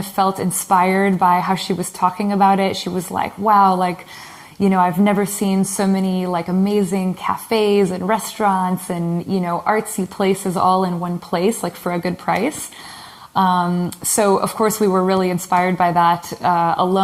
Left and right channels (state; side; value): identical; both; correlation 1.00